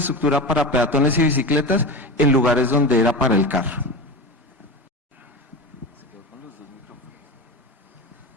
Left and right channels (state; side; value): normal; both; correlation 0.25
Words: para peatones y bicicletas en lugares donde era para el carro.